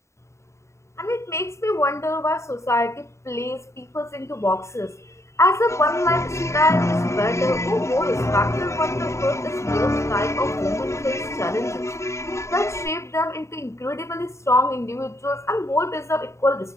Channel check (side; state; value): right; late; 0.14 ms